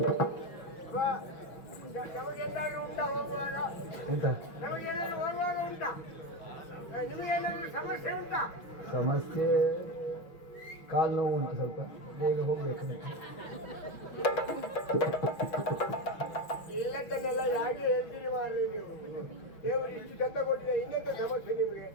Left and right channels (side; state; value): right; late; 5.7 ms